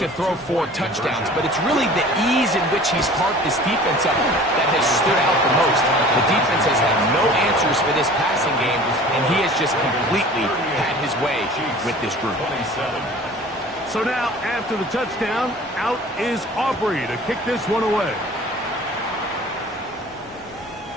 to throw 4 touchdowns, but it's really the ease in which he's parked this defense up that has stood out the most. The defense has had no answers for this passing game, and he has just completely had his way with this group. So now, after the touchdown, out is Aubrey to kick this one away.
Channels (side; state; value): both; normal; correlation 0.45